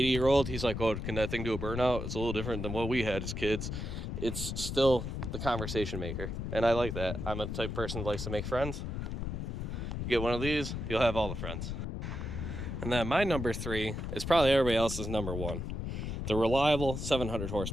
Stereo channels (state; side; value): noise; left; rumble, 4 dB below the sound